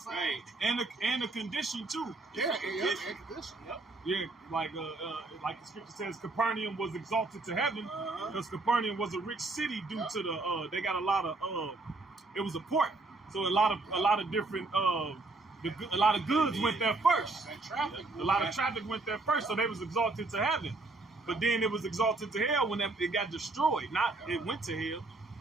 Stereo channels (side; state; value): left; quieter; 3.3 dB